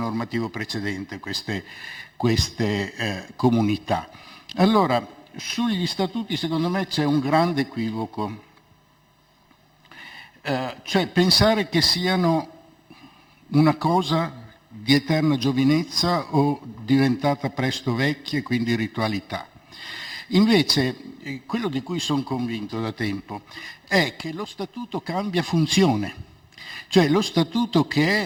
precedente, queste comunità. Allora, sugli statuti secondo me c'è un grande equivoco, cioè pensare che siano una cosa di eterna giovinezza o diventata presto vecchia e quindi ritualità. Invece, quello di cui sono convinto da tempo è che lo statuto cambia funzione. Cioè lo statuto,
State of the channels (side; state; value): both; identical; correlation 1.00